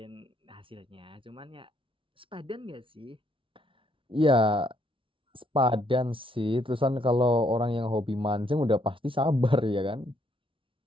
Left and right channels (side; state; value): left; late; 0.25 ms